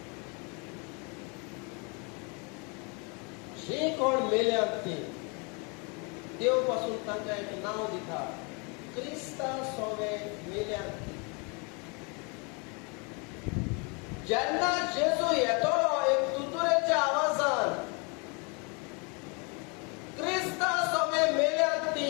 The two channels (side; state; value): right; quieter; 32.5 dB